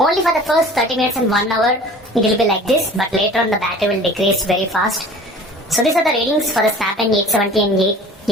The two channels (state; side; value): normal; both; correlation 0.44